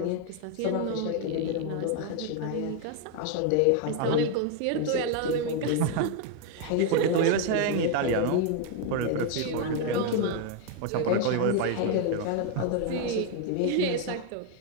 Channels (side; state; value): both; different; correlation 0.01